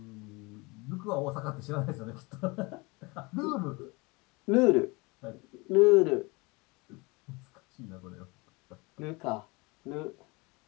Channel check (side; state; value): right; quieter; 26.0 dB